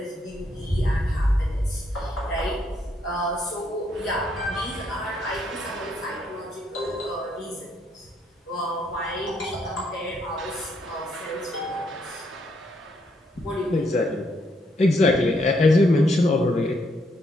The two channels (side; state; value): both; normal; correlation 0.74